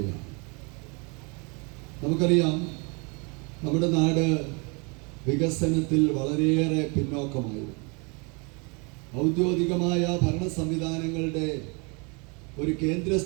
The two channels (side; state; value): left; quieter; 31.8 dB